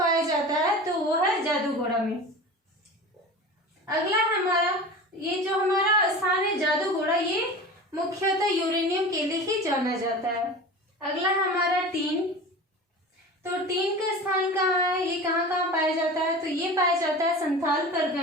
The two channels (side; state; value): both; normal; correlation 0.34